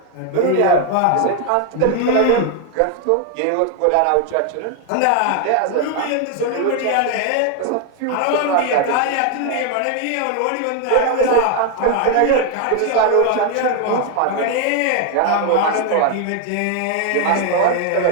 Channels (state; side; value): different; both; correlation 0.01